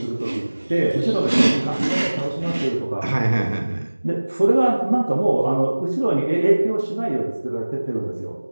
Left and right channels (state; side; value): inverted; both; correlation -1.00